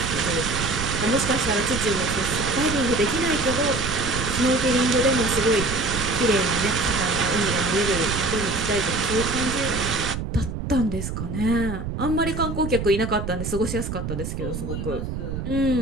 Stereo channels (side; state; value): right; noise; rumble, 5 dB below the sound